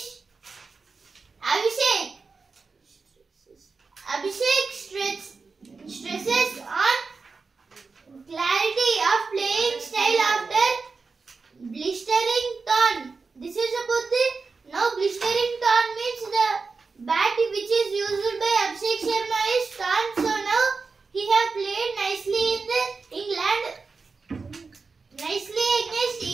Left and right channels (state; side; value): quieter; left; 4.5 dB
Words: Abhishek stresses on clarity of playing style after blistering torn. This is about the now blistering torn means the bat which is used by Abhishek Sharma is torn. So now he have played nicely in the England, nicely against